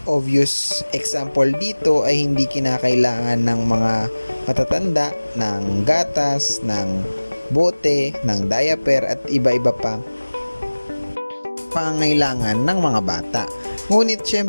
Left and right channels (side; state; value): both; inverted; correlation -1.00